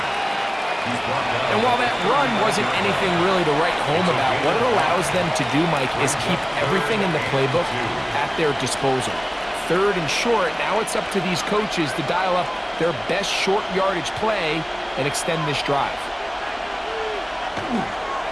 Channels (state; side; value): identical; both; correlation 1.00